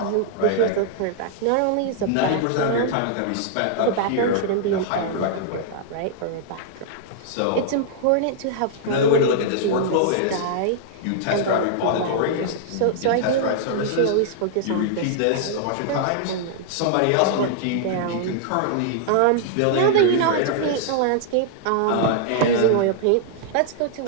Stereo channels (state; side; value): different; both; correlation -0.01